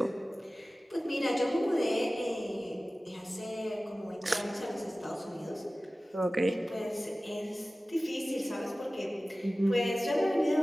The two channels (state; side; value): normal; both; correlation 0.97